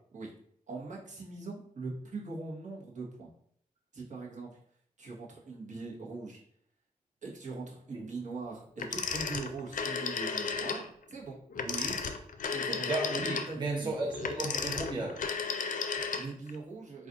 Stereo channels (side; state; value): both; normal; correlation 0.42